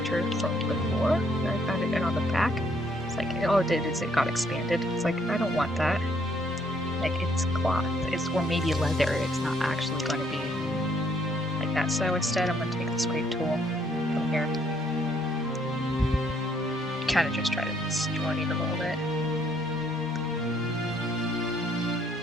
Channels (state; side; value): normal; both; correlation 0.67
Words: from before. I found it on the back. It's like, all it did is it got expanded. It's like, I don't want that. Like, it's cloth, or maybe leather. It's not actually going to be like that. So instead, I'm going to take the scrape tool from here. Kind of just try to distort it a little bit.